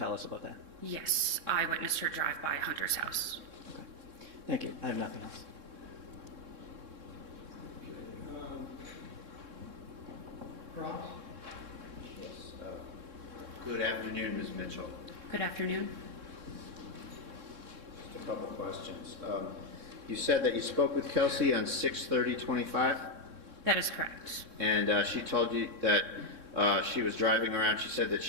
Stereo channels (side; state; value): left; late; 3.7 ms